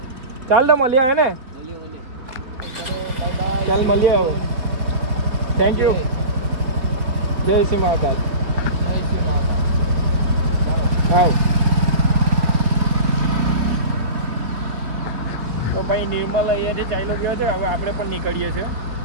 ચાલ તો મળીએ હે ને? ચાલ મળીએ હવે. Thank you. જય શ્રી મહાકાલ. જય શ્રી માતા. ચાલો. હા તો ભાઈ નિર્મલ અહીંયાથી ચાલ્યો ગયો છે. હવે આપણે પણ નીકળીએ છીએ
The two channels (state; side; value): late; left; 3.7 ms